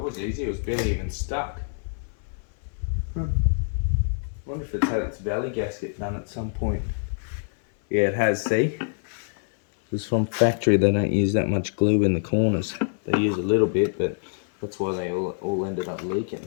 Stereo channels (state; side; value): silent; right; 61 dB below the other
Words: easy. It was barely even stuck. Wonder if it's had its valley gasket done at some point. Yeah, it has, see? It's from factory, they don't use that much glue in the corners. They use a little bit, but that's why they all ended up leaking.